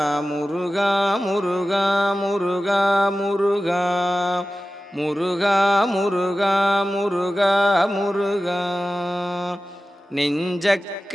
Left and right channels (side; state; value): both; normal; correlation 0.95